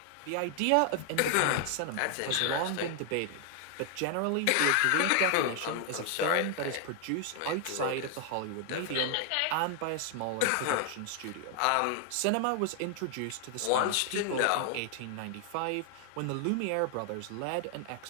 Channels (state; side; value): different; both; correlation 0.00